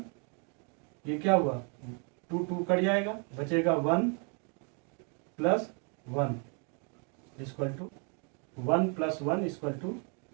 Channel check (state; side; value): quieter; left; 37.3 dB